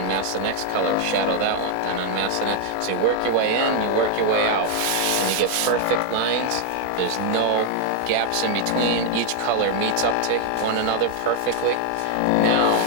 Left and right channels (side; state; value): both; different; correlation 0.00